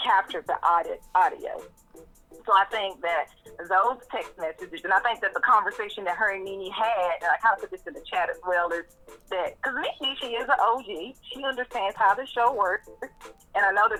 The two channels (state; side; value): identical; both; correlation 1.00